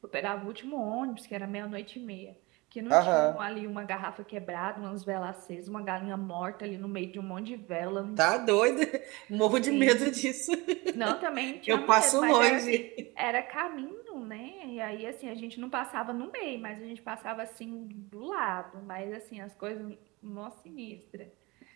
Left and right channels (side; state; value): left; quieter; 24.0 dB